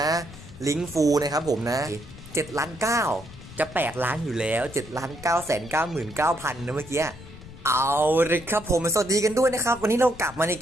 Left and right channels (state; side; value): noise; left; rumble, 17 dB below the sound